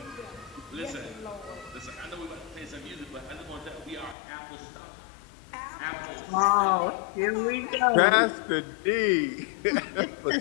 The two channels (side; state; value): right; drops out; at 4.2 s